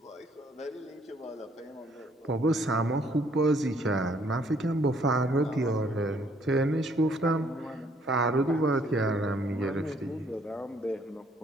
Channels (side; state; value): both; normal; correlation 0.64